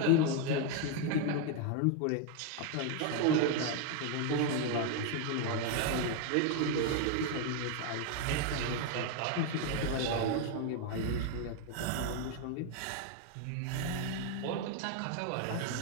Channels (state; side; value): different; both; correlation 0.01